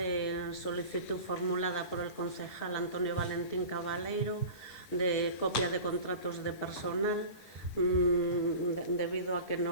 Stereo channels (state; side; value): late; right; 9.4 ms